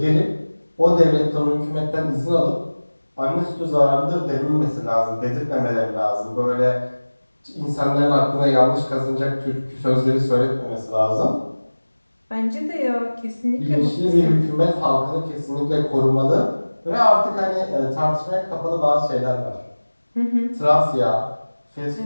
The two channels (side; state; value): both; inverted; correlation -1.00